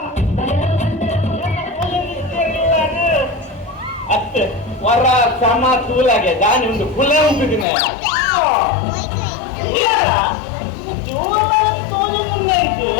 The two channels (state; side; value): drops out; right; at 7.7 s